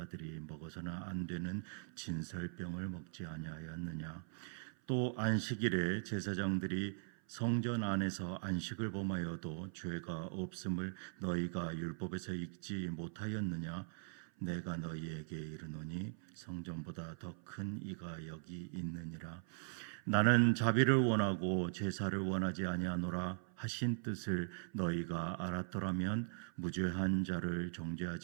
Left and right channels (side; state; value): left; silent; 51 dB below the other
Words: 먹어서는 안 되는 진설병을 먹지 아니하였느냐? 또 안식일에 제사장들이 성전 안에서 안식을 범하여도 죄가 없음을 너희가 율법에서 읽지 못하였느냐? 내가 너희에게 이르노니 성전보다 더 큰 이가 여기 있느니라. 나는 자비를 원하고 제사를 원하지 아니하노라 하신 뜻을 너희가 알았더라면 무죄한 자를